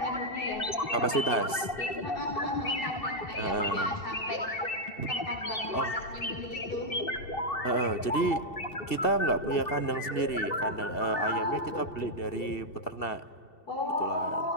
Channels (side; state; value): right; late; 2.7 ms